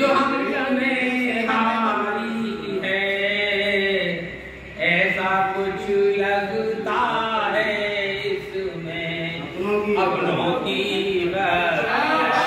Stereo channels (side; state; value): both; identical; correlation 1.00